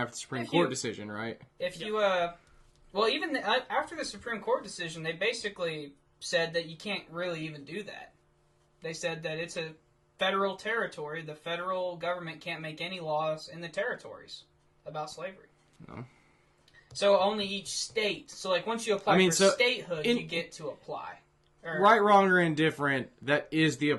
the Supreme If Court you- decision, right? if you, well, even after the Supreme Court decision, they basically said that you can't really even do that. They said that it's a federal territory. The federal government can't make any laws in the territories about slavery. No. So only each state. So like once you apply for statehood, you get to apply. Right, wrong, or indifferent, that is the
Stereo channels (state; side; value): identical; both; correlation 1.00